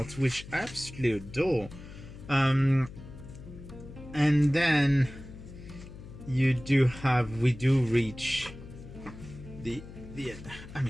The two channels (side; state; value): left; noise; hum, 15 dB below the sound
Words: which I absolutely adore. And then we do reach the end. I